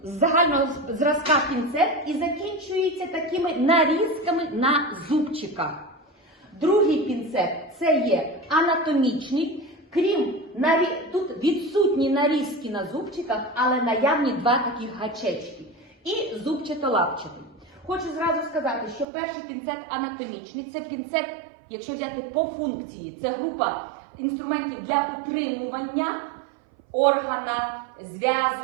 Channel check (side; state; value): left; drops out; at 19.1 s